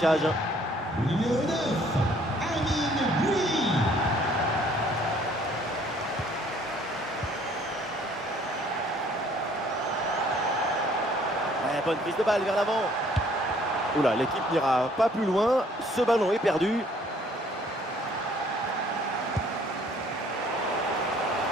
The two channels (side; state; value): both; normal; correlation 0.60